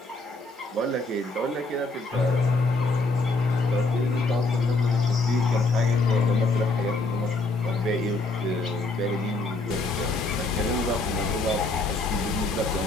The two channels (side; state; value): right; quieter; 3.2 dB